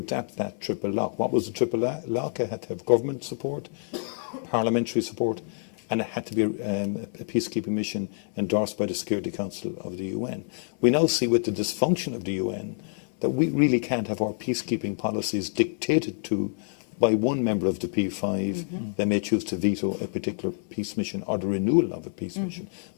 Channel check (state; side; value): silent; right; 60 dB below the other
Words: that triple lock. What was the triple lock? It had to have government support, parliamentary support, and it had to be a peacekeeping mission endorsed by the Security Council of the UN. We now see with the dysfunction of the UN that we really can't have our peacekeeping policies dictated to by one member of the P5, they may choose to veto a particular peace mission or the renewal of a peace mission.